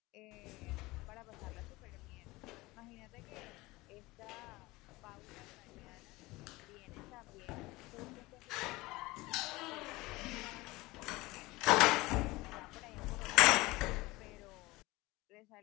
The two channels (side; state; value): right; quieter; 21.0 dB